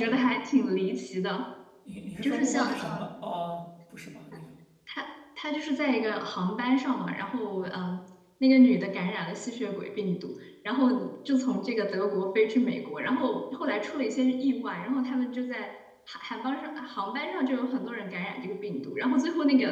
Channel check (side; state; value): both; identical; correlation 1.00